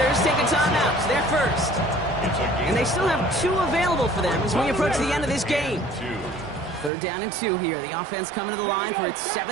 take a timeout. They're first. And they still have 2 available for them as we approach the end of this game. Third down and 2 here. The offense coming to the line for its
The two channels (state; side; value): drops out; left; at 6.9 s